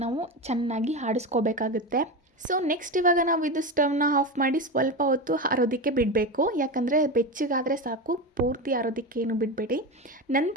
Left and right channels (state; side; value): normal; both; correlation 0.20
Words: ನಾವು ಚೆನ್ನಾಗಿ ಆಡಿಸ್ಕೋಬೇಕಾಗುತ್ತೆ. ಸೊ ನೆಕ್ಸ್ಟ್ ಇವಾಗ ನಾವು ಇದು ಸ್ಟವ್ನ ಆಫ್ ಮಾಡಿ ಸ್ವಲ್ಪ ಹೊತ್ತು ಆರೋದಕ್ಕೆ ಬಿಡಬೇಕು. ಯಾಕಂದರೆ ಬೆಚ್ಚಗಾದರೆ ಸಾಕು, ಪೂರ್ತಿ ಆರೋದಕ್ಕೆ ಏನು ಬಿಡಬೇಡಿ.